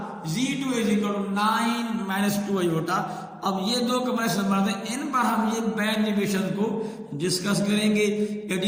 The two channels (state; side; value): identical; both; correlation 1.00